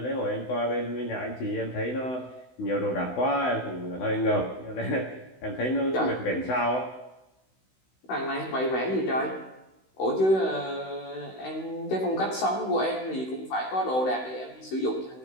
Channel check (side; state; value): right; late; 16 ms